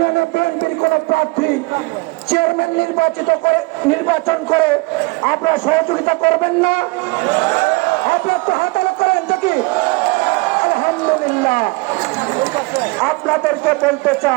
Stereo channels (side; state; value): left; quieter; 25.5 dB